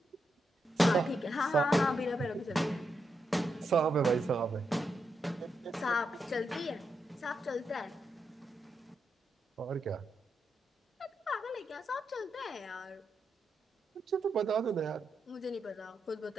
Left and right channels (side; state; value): both; normal; correlation 0.84